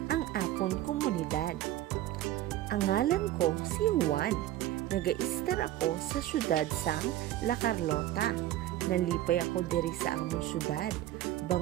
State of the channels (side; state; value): left; quieter; 13.9 dB